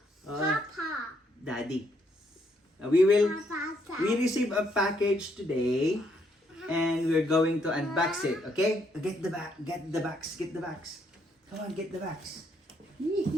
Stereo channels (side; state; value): both; normal; correlation 0.72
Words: Papa. Daddy. We receive a package today and we're going to unbox it, okay? Get the box. Come on, get the box.